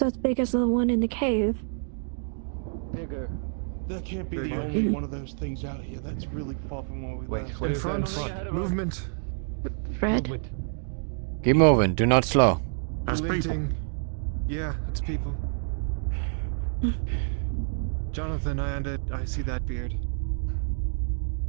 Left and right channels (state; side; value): silent; left; digital silence